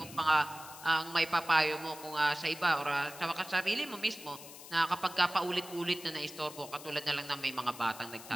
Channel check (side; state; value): left; noise; hiss, 15 dB below the sound